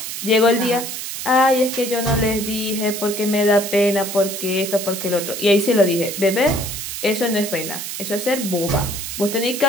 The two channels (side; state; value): right; noise; hiss, 6 dB below the sound